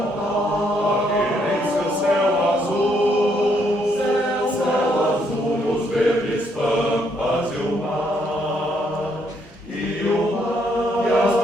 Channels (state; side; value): normal; both; correlation 0.72